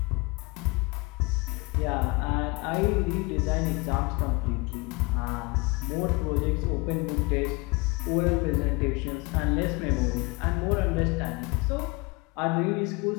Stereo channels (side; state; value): right; quieter; 24.6 dB